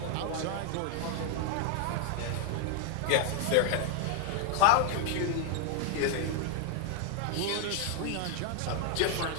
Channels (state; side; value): different; both; correlation 0.00